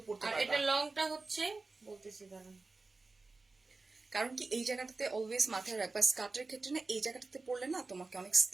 পড়তে আর পারবে। এটা লংটা হচ্ছে বলতেছি দাঁড়ান। কারণ কি এই জায়গাটাতে অলওয়েজ মাথায় রাখবা, স্কার্টের ক্ষেত্রে না এই জায়গাটাতে পড়লে না তোমাকে অনেক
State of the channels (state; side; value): quieter; left; 3.7 dB